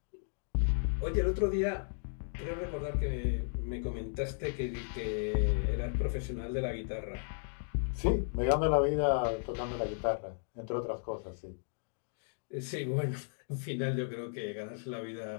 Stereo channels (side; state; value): right; silent; digital silence